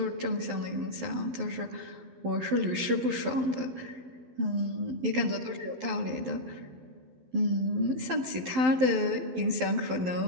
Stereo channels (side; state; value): left; late; 12 ms